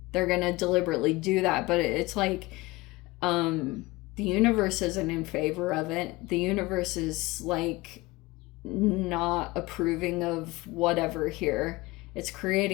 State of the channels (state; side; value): quieter; right; 21.4 dB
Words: They're gonna deliberately do that. But it's like the universe isn't in favor of it. The universe is, like, not approving of whatever here. It's